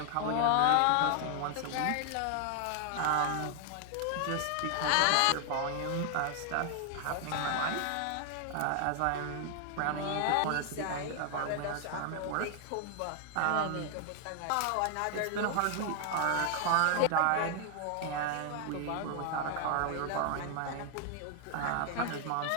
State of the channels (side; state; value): both; different; correlation 0.00